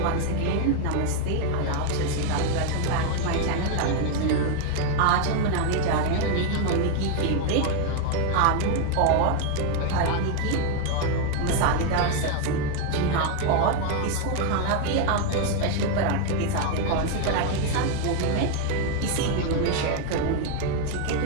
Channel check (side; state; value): both; different; correlation 0.00